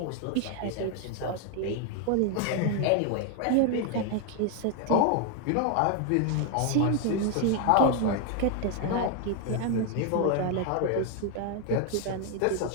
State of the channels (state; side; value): different; both; correlation 0.01